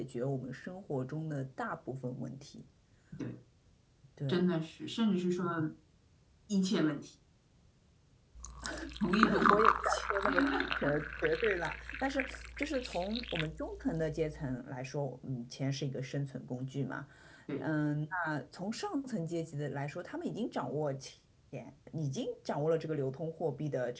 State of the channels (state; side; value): identical; both; correlation 1.00